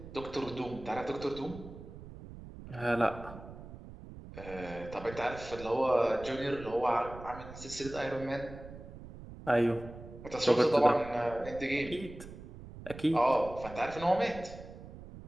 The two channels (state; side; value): noise; right; rumble, 14 dB below the sound